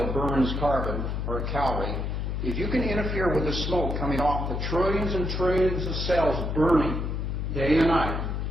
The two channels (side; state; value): left; noise; hum, 2 dB below the sound